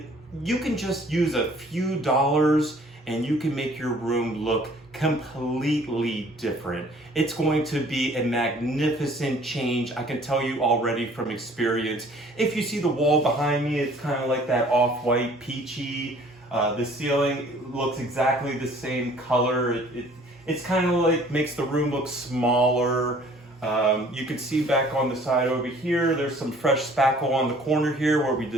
you can just use a few dollars and you can make your room look completely different. It's going to be a magnificent change. I can tell you already from experience. If you see the wall behind me, it's kind of like that off-white peachy. The ceiling looks exactly the same color. It's kind of like makes the room look smaller. You can see back on the side over here, there's some fresh spackle on the corner here where we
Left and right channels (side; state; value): both; normal; correlation 0.54